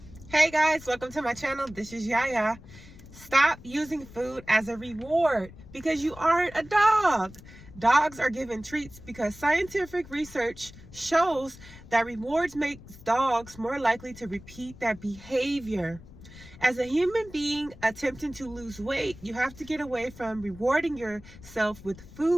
Hey guys, welcome to my channel. This is Yaya. Stop using food as a reward because you aren't a dog. Dogs are given treats because scientific research shows that rewards makes dogs more likely to repeat that behavior. As a human being attempting to lose weight, you have to get away from rewarding yourself with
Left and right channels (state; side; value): noise; left; rumble, 19 dB below the sound